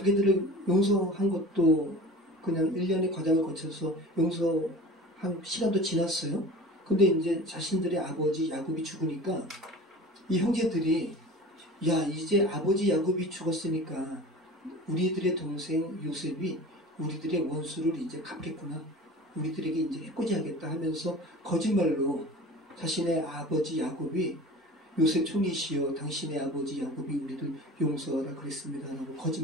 용서한 것도 그냥 1년의 과정을 거쳐서 용서한 시간도 지났어요. 근데 이제 자신들의 아버지 야곱이 죽으니까 이 형제들이 야, 이제 아버지 야곱이 죽었으니까 우리들의 동생 요셉이 우리들의 원수를 이제 갚겠구나. 우리들에게 이제 해코지하겠다 하면서 거짓말로 자신의 아버지 야곱이 요셉 총리시여 당신의 아버지 야곱이 우리를 용서하라 그랬습니다. 라고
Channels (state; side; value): normal; both; correlation 0.38